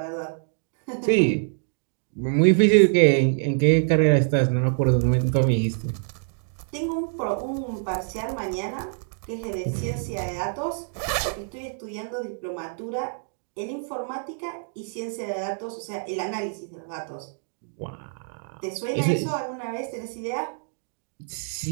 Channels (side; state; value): left; silent; digital silence